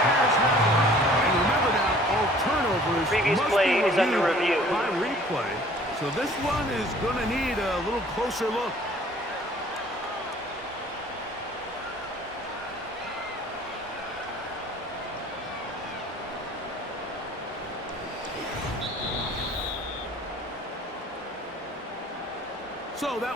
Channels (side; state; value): both; normal; correlation 0.52